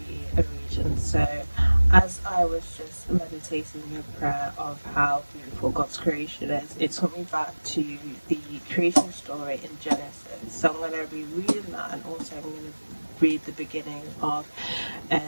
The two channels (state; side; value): inverted; both; correlation -1.00